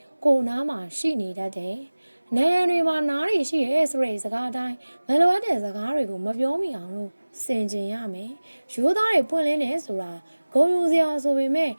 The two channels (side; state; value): both; inverted; correlation -1.00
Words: ကိုနားမှာရှိနေတတ်တယ်နေရန်တွေမှာနားတွေရှိရဲဆိုတဲ့စကားတိုင်းမလိုအပ်တဲ့စကားတွေကိုမပြောမိအောင်လို့စင်ကြင်ရမယ်ရိုးသားတွေပွင့်လင်းနေဆိုတာဂုဏ်ယူစရာဆိုပေမဲ့